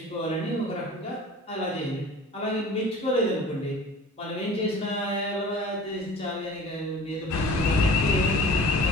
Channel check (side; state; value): both; normal; correlation 0.43